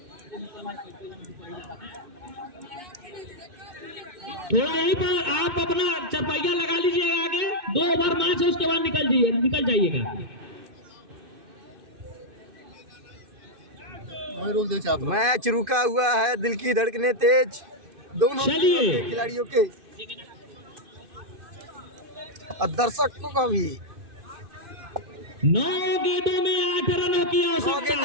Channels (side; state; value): left; late; 2.5 ms